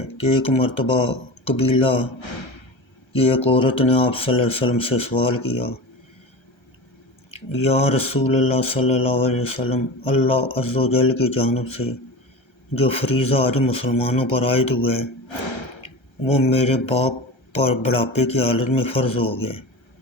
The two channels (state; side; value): late; right; 1.3 ms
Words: کہ ایک مرتبہ قبیلہ کی ایک عورت نے آپ صلی اللہ علیہ وسلم سے سوال کیا، یا رسول اللہ صلی اللہ علیہ وسلم، اللہ عز و جل کی جانب سے جو فریضہ حج مسلمانوں پر عائد ہوا ہے وہ میرے باپ پر بڑھاپے کی حالت میں فرض ہو گیا،